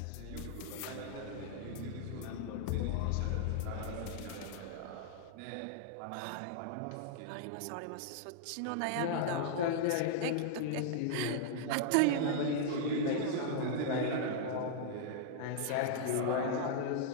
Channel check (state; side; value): different; both; correlation -0.01